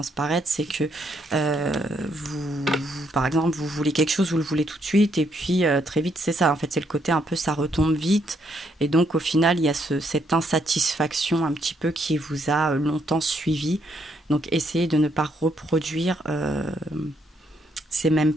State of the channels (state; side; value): normal; both; correlation 0.74